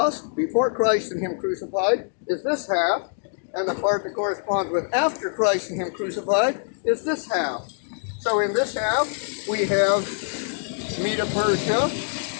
before Christ and him crucified, is this half, and the part that corresponds with after Christ and him crucified is this half. So in this half, we have Medo-Persia,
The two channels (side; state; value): right; silent; digital silence